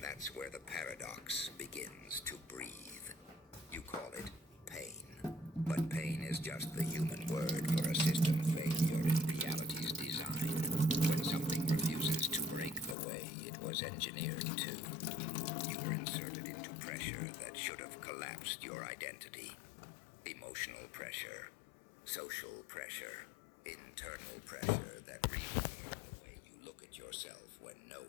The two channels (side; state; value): right; drops out; at 13.0 s